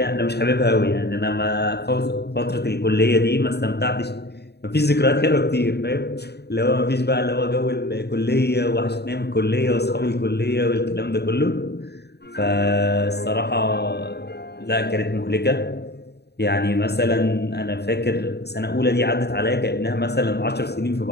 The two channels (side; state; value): right; late; 0.48 ms